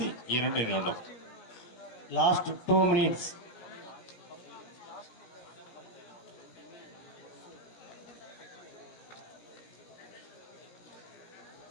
2 நிமிடம். Last 2 minutes.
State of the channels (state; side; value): late; right; 17 ms